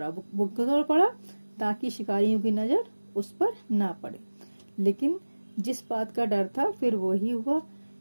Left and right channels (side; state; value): both; inverted; correlation -1.00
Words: वो दौड़ पड़ा ताकि शिकारियों की नजर उस पर ना पड़े। लेकिन जिस बात का डर था फिर वो ही हुआ।